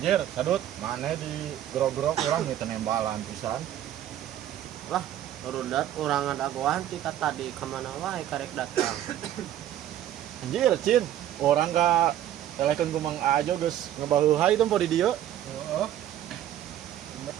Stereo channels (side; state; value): left; quieter; 11.8 dB